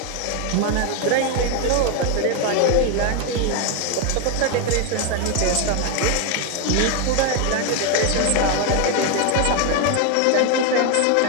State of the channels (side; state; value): both; different; correlation 0.01